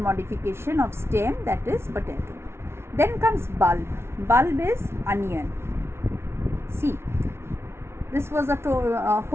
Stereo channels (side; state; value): left; late; 0.12 ms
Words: modification of stem, that is potato. Then comes bulb. Bulb is onion. See, this was a